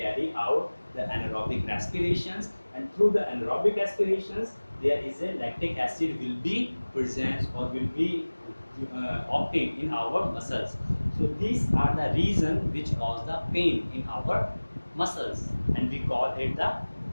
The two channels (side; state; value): both; inverted; correlation -1.00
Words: out the anaerobic respirations, and through the anaerobic respirations, there is a lactic acid will be present or will be obtained in our muscles. So these are the reason which cause the pain in our muscles, and we call it the